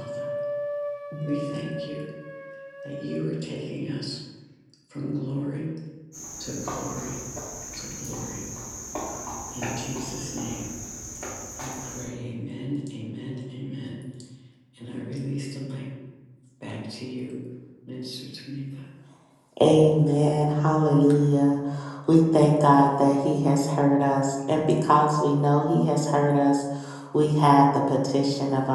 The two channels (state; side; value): identical; both; correlation 1.00